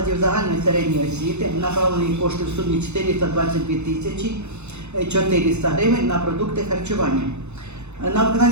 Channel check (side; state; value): left; late; 0.82 ms